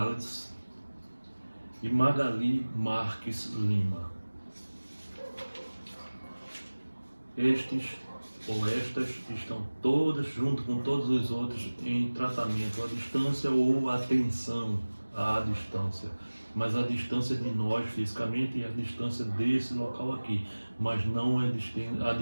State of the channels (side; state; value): both; inverted; correlation -1.00